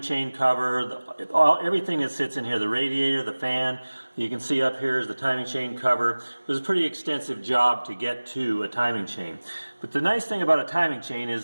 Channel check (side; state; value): both; inverted; correlation -1.00